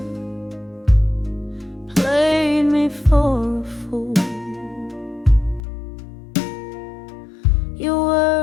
played me for a fool? Your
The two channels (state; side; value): drops out; right; at 5.6 s